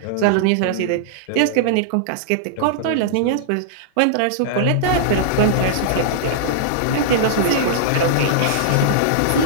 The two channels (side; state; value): both; different; correlation -0.02